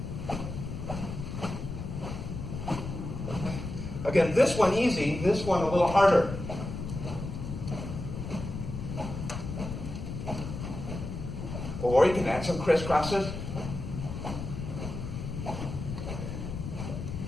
Again, this one easy, this one a little harder. Or you can add some crisscrosses.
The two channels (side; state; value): left; noise; rumble, 6 dB below the sound